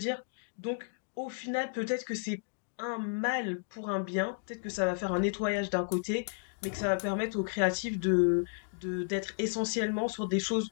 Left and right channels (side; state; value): right; silent; digital silence